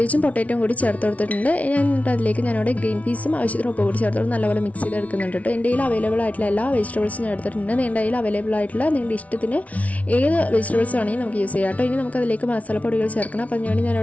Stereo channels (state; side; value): late; right; 0.067 ms